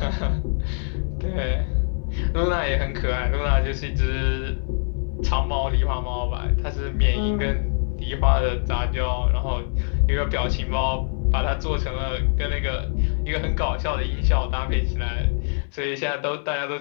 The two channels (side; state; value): right; silent; 63 dB below the other